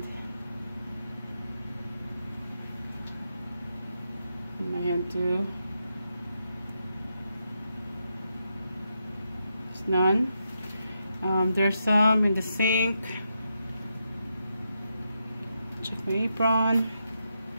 in my hand too. None. There's some in the sink. Check my apron.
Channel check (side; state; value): both; inverted; correlation -0.84